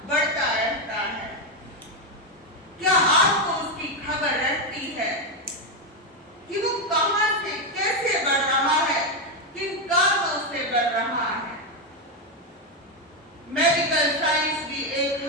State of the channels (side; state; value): both; normal; correlation 0.07